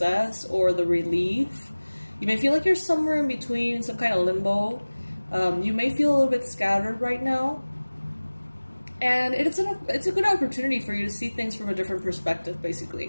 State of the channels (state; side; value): inverted; both; correlation -1.00